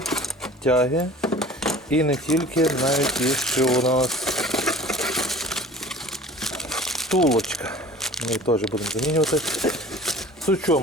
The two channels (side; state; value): both; normal; correlation 0.44